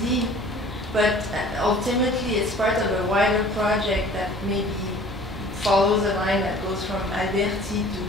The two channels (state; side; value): normal; both; correlation 0.48